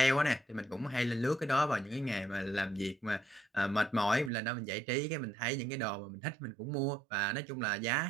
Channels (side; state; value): left; drops out; at 4.3 s